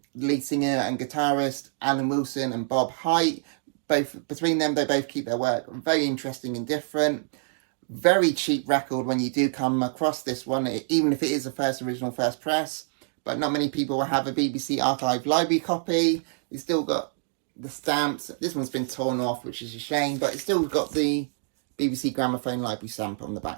lead singer and guitarist Alan Wilson and Bob Haight. Between them, they both keep their work very interesting and different. Very cheap record when you do come across this one, even if it is a first press. But not many people will have a BBC Archive library copy. It's still got the stamps. This one's been torn off, which is a shame, but it's still got the BBC Gramophone library stamp on the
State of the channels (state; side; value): silent; left; digital silence